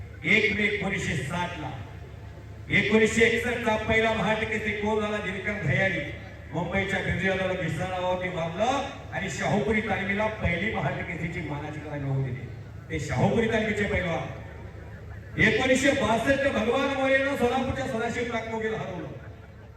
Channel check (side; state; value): both; identical; correlation 1.00